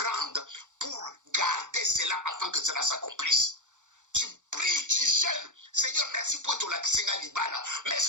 pour garder cela afin que cela s'accomplisse. Tu pries, tu jeûnes. Seigneur, merci pour ton lakisinga libala.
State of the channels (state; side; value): late; left; 0.85 ms